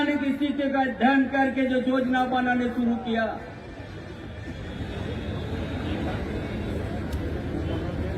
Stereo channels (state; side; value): identical; both; correlation 1.00